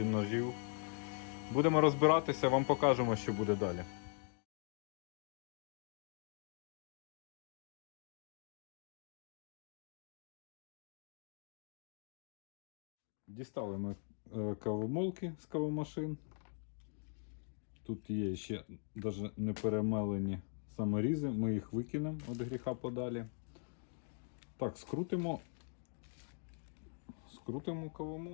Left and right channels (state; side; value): silent; right; 50 dB below the other